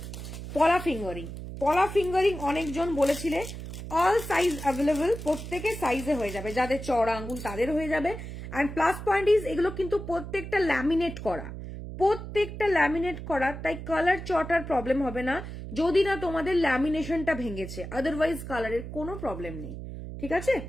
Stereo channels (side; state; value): right; noise; hum, 9 dB below the sound